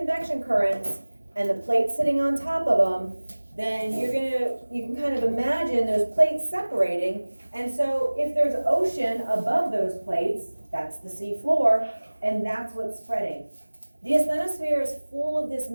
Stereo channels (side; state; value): both; inverted; correlation -1.00